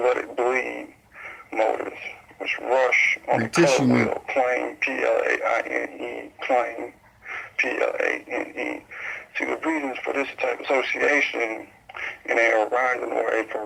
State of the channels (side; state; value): both; identical; correlation 1.00